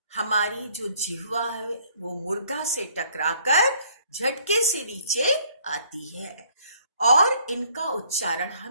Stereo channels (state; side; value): inverted; both; correlation -0.61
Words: हमारी जो जिह्वा है वो मूर्धा से टकराकर झटके से नीचे आती है, और इनका उच्चारण